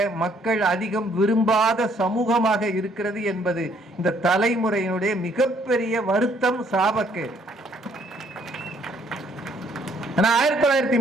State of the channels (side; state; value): both; normal; correlation 0.65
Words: மக்கள் அதிகம் விரும்பாத சமூகமாக இருக்கிறது என்பது இந்த தலைமுறையினுடைய மிகப்பெரிய வருத்தம், சாபக்கேடு.